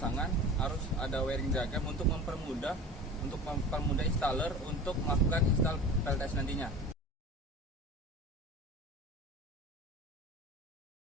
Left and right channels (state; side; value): normal; both; correlation 0.35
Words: harus ada wiring diagram untuk mempermudah installer untuk melakukan install PLTS nantinya.